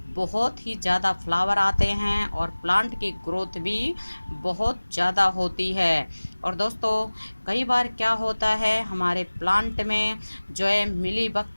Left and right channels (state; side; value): inverted; both; correlation -1.00